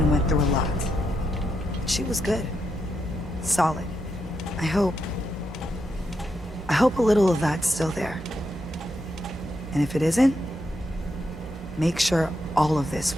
went through a lot. She was good. Solid. I hope a little of that's still there. And if it isn't, make sure all of this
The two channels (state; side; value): normal; both; correlation 0.83